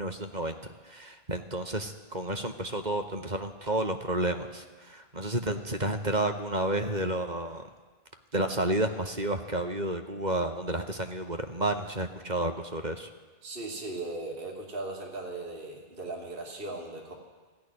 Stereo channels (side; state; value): left; late; 2.1 ms